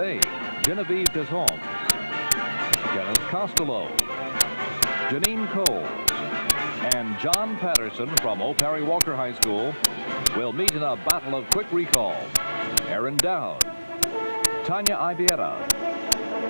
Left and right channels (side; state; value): both; inverted; correlation -1.00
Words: Genevieve Desholmes, Kenneth Costello, Janine Coles, and John Patterson from O. Perry Walker High School will meet in a battle of quick recall. Aaron Dowd, Tanya